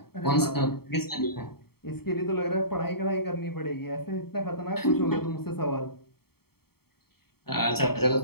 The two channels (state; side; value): late; right; 0.95 ms